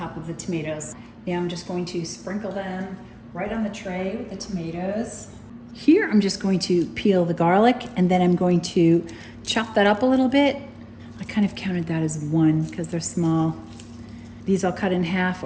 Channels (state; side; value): identical; both; correlation 1.00